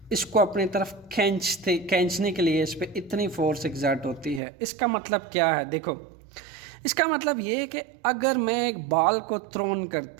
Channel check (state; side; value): drops out; left; at 4.4 s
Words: इसको अपनी तरफ खींचने के लिए इस पे इतनी फोर्स एग्जर्ट होती है। इसका मतलब क्या है? देखो, इसका मतलब ये है कि अगर मैं एक बॉल को थ्रोन